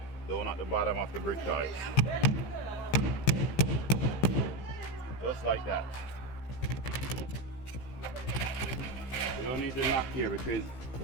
down at the bottom of the brick ties. Just like that. You don't need to knock here because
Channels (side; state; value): right; late; 15 ms